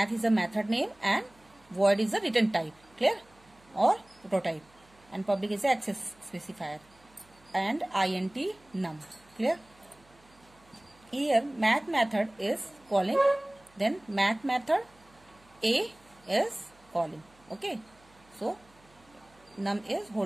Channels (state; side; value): noise; right; hum, 30 dB below the sound